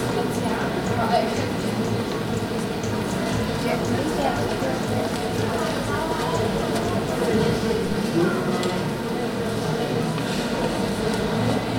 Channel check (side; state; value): both; identical; correlation 1.00